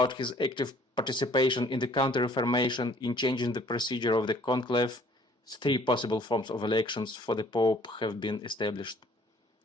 his active participation in the Counter-Reformation in changing the procedure of the conclave. 3 possible forms of elections for the pope have been established,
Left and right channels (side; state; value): both; normal; correlation 0.57